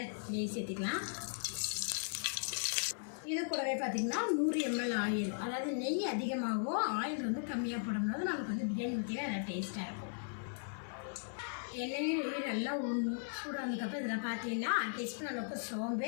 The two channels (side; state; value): right; silent; 53 dB below the other